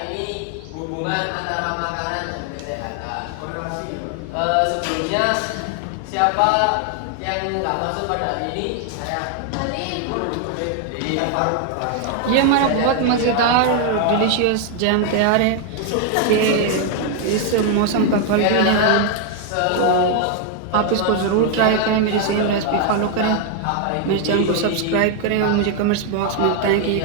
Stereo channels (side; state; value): both; different; correlation 0.00